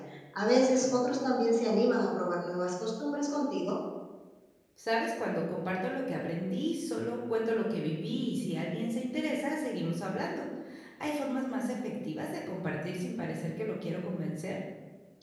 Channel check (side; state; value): both; identical; correlation 1.00